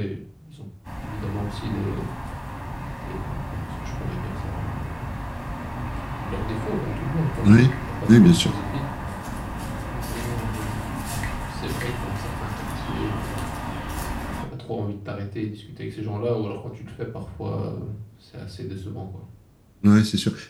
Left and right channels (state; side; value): identical; both; correlation 1.00